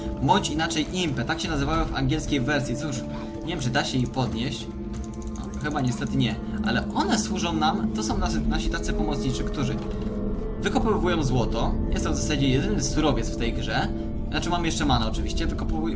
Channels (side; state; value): both; identical; correlation 1.00